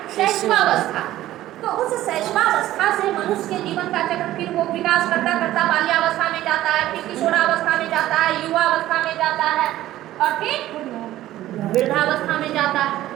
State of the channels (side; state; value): left; quieter; 14.4 dB